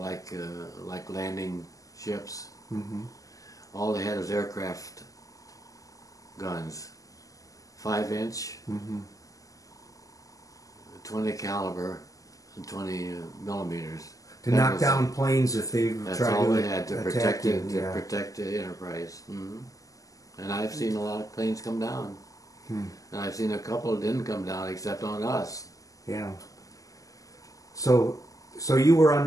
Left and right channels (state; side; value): late; right; 0.17 ms